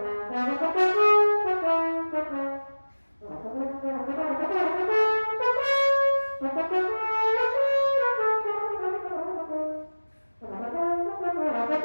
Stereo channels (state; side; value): inverted; both; correlation -1.00